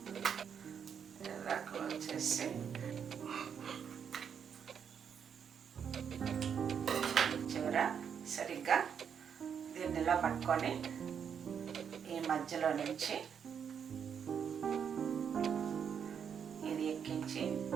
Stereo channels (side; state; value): left; quieter; 7.5 dB